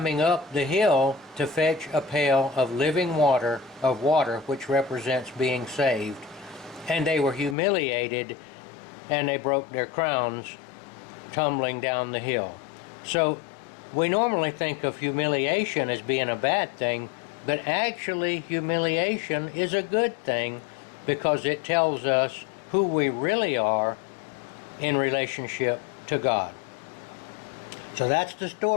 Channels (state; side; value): drops out; right; at 7.6 s